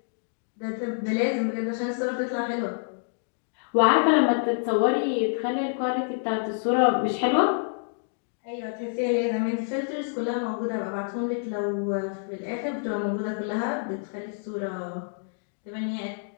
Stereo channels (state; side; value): silent; right; digital silence